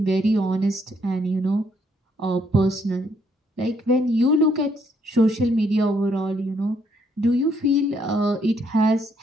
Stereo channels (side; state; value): both; normal; correlation 0.71